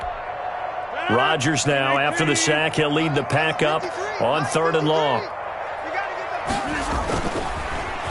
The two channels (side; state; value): both; identical; correlation 1.00